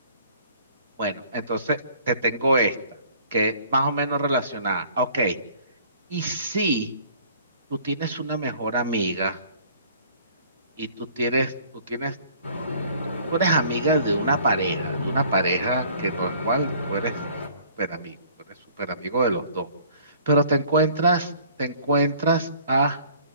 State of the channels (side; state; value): both; inverted; correlation -0.54